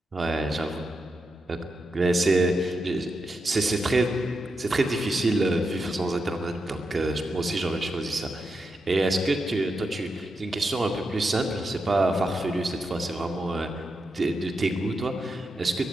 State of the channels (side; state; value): both; normal; correlation 0.86